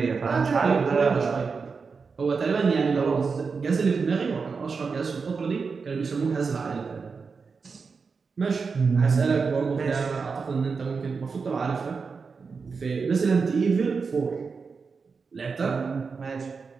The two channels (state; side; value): quieter; left; 5.0 dB